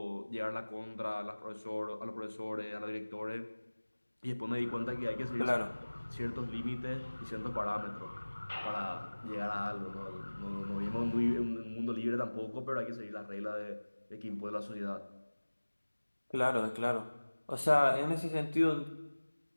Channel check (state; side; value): inverted; both; correlation -1.00